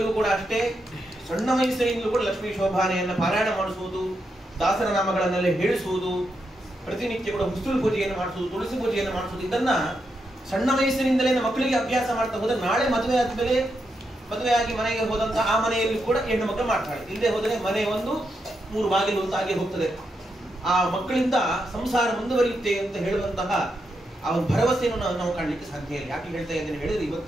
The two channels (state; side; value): normal; both; correlation 0.83